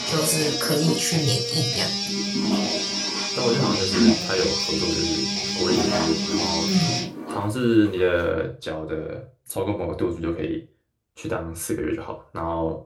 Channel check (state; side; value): identical; both; correlation 1.00